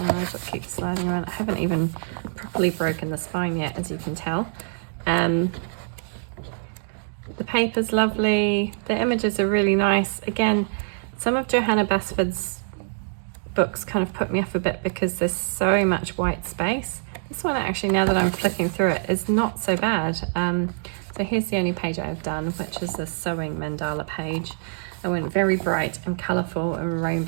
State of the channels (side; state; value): left; silent; digital silence